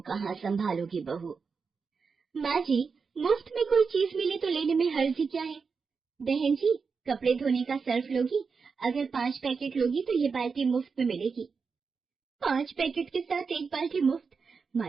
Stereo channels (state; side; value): quieter; left; 5.2 dB